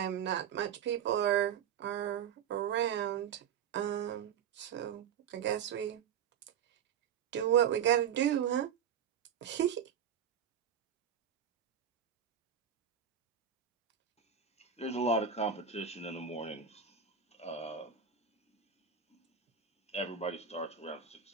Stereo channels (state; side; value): quieter; left; 8.3 dB